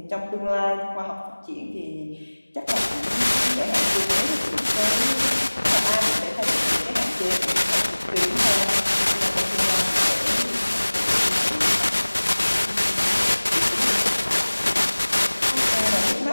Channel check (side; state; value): both; inverted; correlation -1.00